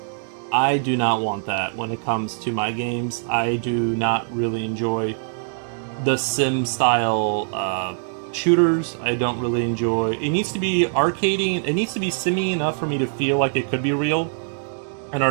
I do not want that when it comes to my games. I do not really enjoy the sim style shooters. I don't really enjoy. It needs to be arcadey. It needs to be simmy enough for me to feel like it could be real, and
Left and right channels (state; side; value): silent; left; 64 dB below the other